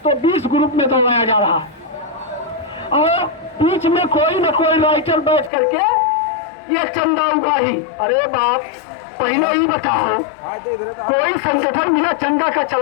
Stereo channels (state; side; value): drops out; right; at 5.5 s